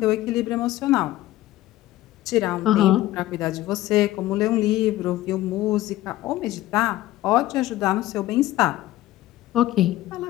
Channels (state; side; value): quieter; right; 15.7 dB